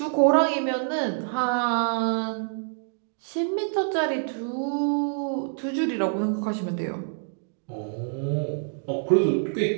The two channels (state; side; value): silent; left; digital silence